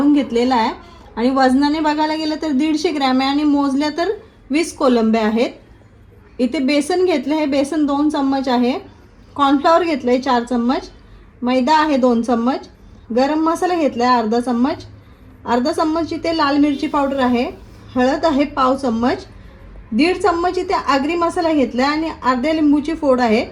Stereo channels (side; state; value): both; identical; correlation 1.00